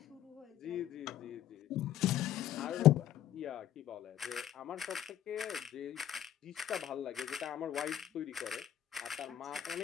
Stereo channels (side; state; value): right; quieter; 11.4 dB